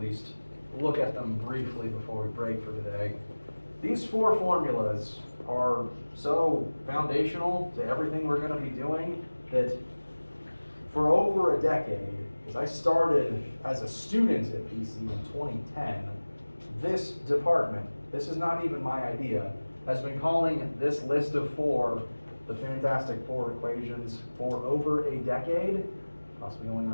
look at them briefly before we break for today. These 4 formulas are so foundational to everything we're going to be doing that for over a decade, as I started as a student at PC in 2010, this department, this is not even my idea, has been calling this list of 4 the Fantastic 4 equations for over a decade, possibly going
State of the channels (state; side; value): inverted; both; correlation -1.00